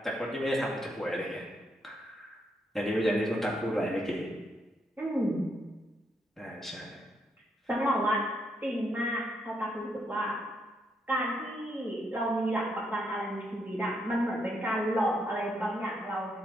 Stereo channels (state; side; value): normal; both; correlation 0.77